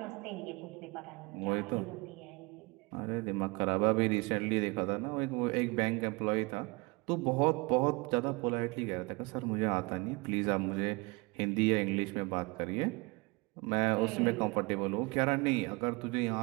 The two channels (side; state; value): left; quieter; 27.1 dB